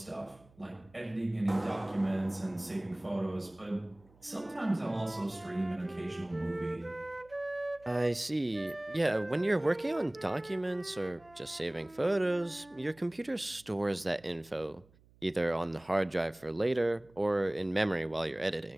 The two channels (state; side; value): noise; right; hum, 28 dB below the sound